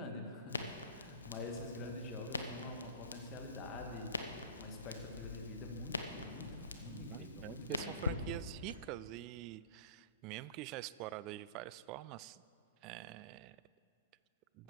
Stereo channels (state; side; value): inverted; both; correlation -0.34